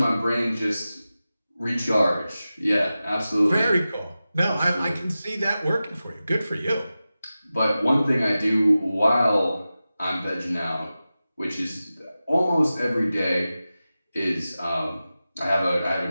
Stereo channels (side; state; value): both; inverted; correlation -0.94